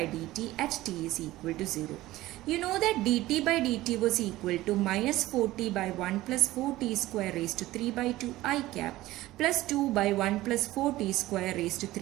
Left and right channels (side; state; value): left; quieter; 16.9 dB